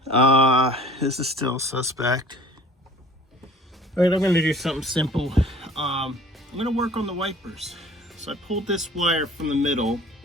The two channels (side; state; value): both; normal; correlation 0.49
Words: This is still suspect. All right, I'm gonna do something simple. I'm gonna work on the wipers. So I pulled this wire from the middle.